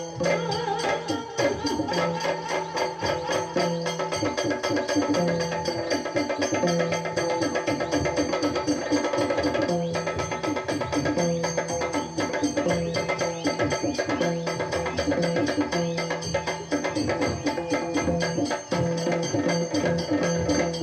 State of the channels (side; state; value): both; identical; correlation 1.00